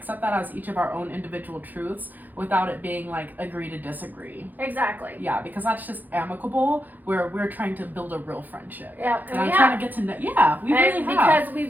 that as each of our own individual truths without it being like agree to disagree. Exactly. Yeah, because that's just amicable where we're trying to build a real friendship. Yeah, and I'm trying to get to know. Yeah, we really have. Because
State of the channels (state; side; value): late; left; 0.085 ms